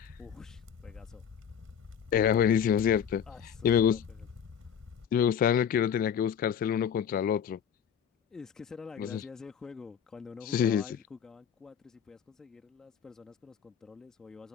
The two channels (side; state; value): right; quieter; 8.2 dB